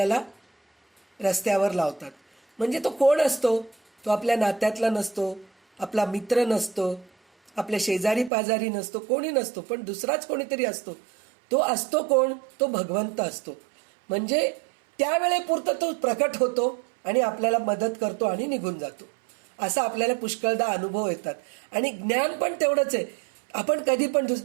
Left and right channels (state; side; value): drops out; left; at 8.3 s